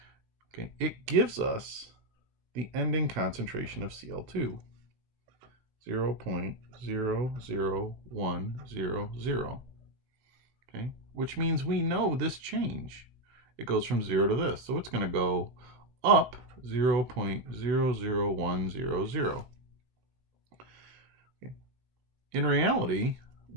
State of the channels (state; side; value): late; left; 16 ms